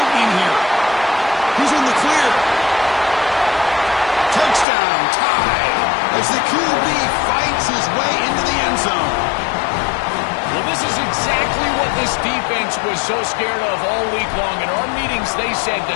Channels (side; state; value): right; drops out; at 4.7 s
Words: here. He's in the clear. Touchdown, tied, as the QB fights his way into the end zone. Well, this is exactly what this defense was so scared of all week long. In our meetings, they said